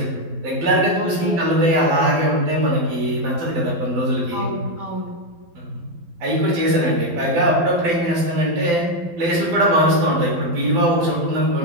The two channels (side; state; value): left; late; 12 ms